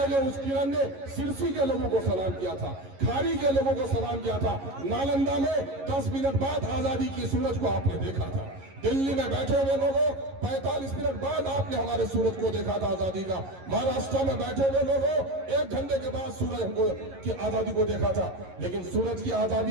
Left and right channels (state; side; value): late; left; 11 ms